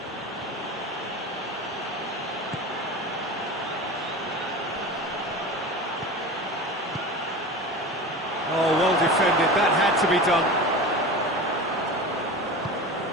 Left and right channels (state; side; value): normal; both; correlation 0.31